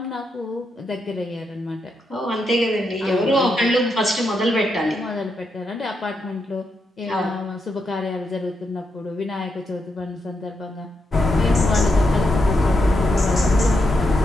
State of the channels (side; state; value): both; normal; correlation 0.83